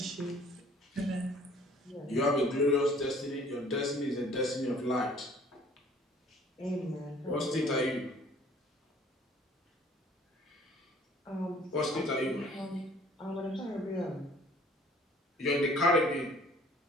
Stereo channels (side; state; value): both; normal; correlation 0.54